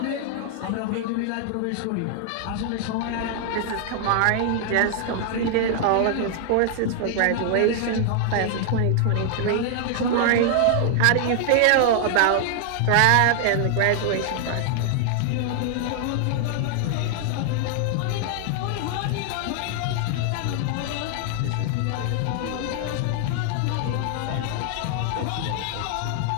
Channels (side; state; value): both; different; correlation 0.00